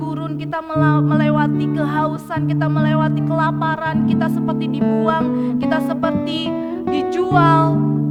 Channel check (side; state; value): both; identical; correlation 1.00